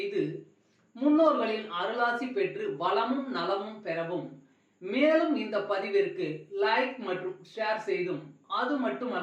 முன்னோர்களின் அருளாசி பெற்று வளமும் நலமும் பெறவும், மேலும் இந்த பதிவிற்கு லைக் மற்றும் ஷேர் செய்தும், அது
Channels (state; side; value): identical; both; correlation 1.00